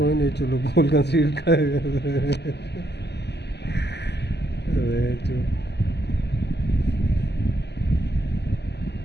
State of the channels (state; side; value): late; right; 0.50 ms